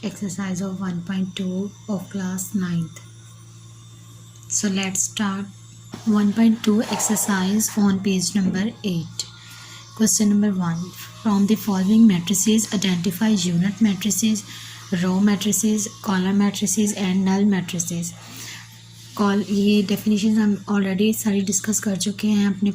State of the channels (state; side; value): identical; both; correlation 1.00